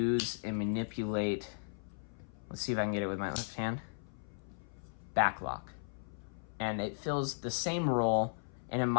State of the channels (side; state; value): right; silent; 53 dB below the other